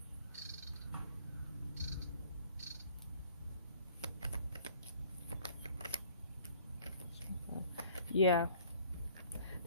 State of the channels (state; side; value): inverted; both; correlation -0.54